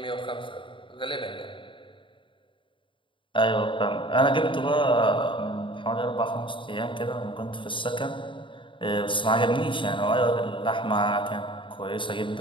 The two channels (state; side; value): late; right; 0.24 ms